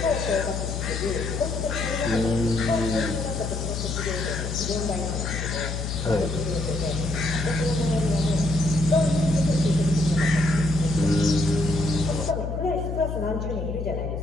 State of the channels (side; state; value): left; noise; hum, 4 dB below the sound